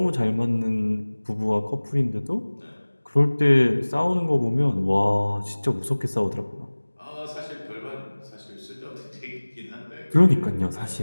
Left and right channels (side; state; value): both; inverted; correlation -1.00